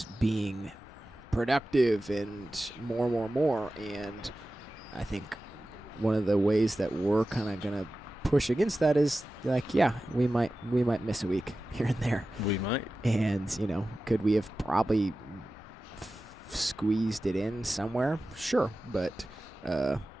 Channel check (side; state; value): both; normal; correlation 0.95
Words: being productive and more, and I think one of the ways that we're kind of gonna push against that is like, yeah, we might miss a week here and there. We might. And could we have probably squeezed it in somewhere? Sure, but